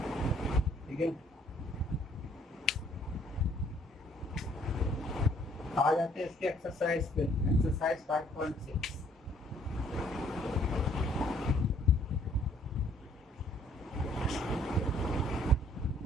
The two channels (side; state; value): both; normal; correlation 0.61